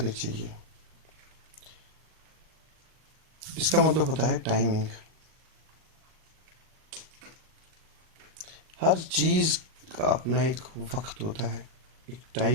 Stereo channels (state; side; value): late; left; 38 ms